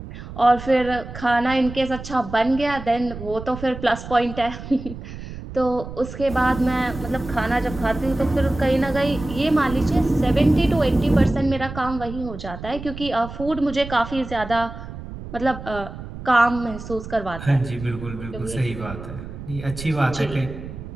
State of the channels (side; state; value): right; noise; rumble, 11 dB below the sound